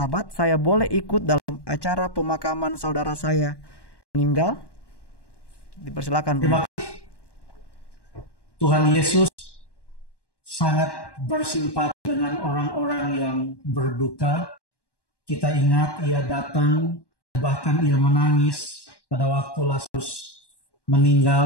saya boleh ikut dalam acara pemakaman saudara saya meninggal? Dipersilakan. Terima kasih. Tuhan Yesus sangat bersimpati dengan orang-orang yang berduka. Kita ingat ia datang, bahkan ia menangis pada waktu Lazarus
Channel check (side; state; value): right; late; 1.1 ms